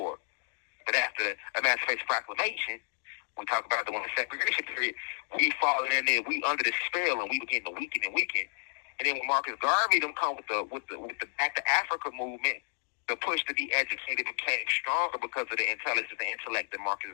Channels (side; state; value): right; silent; 57 dB below the other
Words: But after the Emacipation Proclamation, we talk about the segregation period, we falling in there, we under the spell, and we begin to weaken and weaken. And then when Marcus Garvey them come with the Back to Africa movement, the push to be educated became stronger because of the intelligence and intellect that Marcus